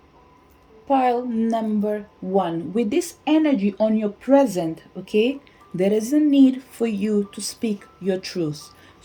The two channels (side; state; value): both; identical; correlation 1.00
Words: pile number 1, with this energy on your present, okay, there is a need for you to speak your truth.